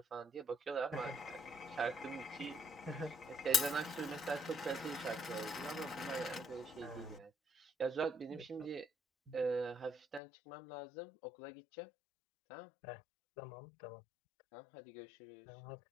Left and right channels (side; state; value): right; drops out; at 10.2 s